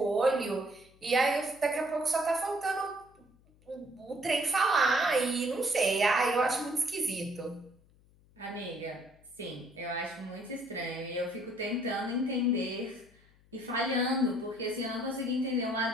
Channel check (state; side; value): noise; left; hum, 29 dB below the sound